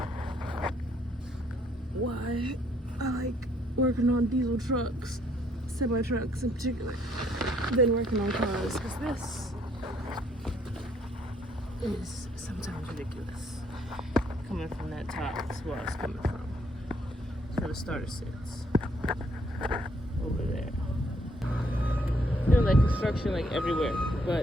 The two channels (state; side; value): normal; both; correlation 0.68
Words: why I like working on diesel trucks, semi trucks in particular, than working on cars, because this is sometimes ridiculous. Coming from that top, that's where it's coming from. That's where the starter sits. Over there. Feeling like construction like everywhere,